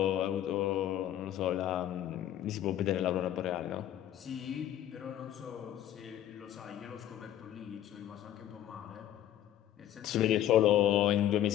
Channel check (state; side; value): quieter; right; 11.9 dB